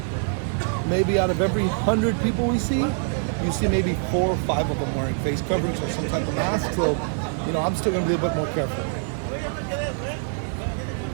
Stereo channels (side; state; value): left; silent; 62 dB below the other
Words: maybe out of every 100 people we see, you see maybe 4 or 5 of them wearing face coverings or some type of mask. So, you know, I'm still going to be a bit more careful.